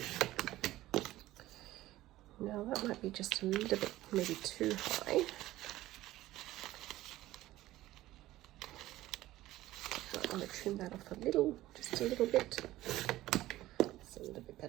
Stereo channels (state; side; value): quieter; left; 15.9 dB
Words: Now that might be just a little bit maybe too high. I want to trim that off a little, just a little bit. It's a little bit